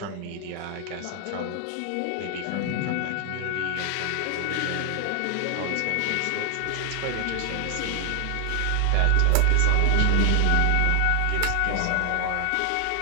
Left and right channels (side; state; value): both; different; correlation 0.00